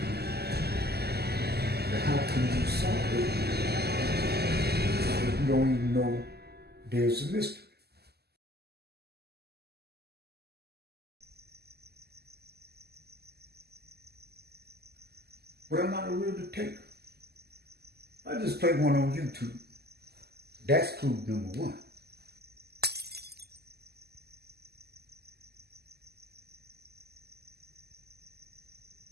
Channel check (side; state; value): left; late; 0.46 ms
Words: But how can you solve it if you don't even know there's a mystery? But I'm not a real detective. I just play one on YouTube. That's clue number one.